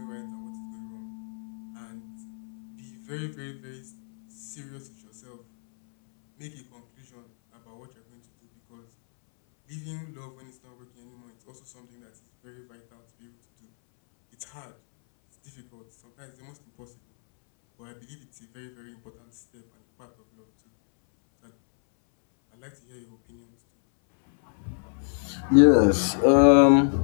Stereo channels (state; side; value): silent; right; 61 dB below the other